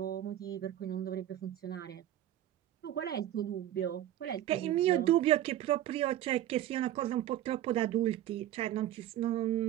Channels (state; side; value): quieter; left; 12.7 dB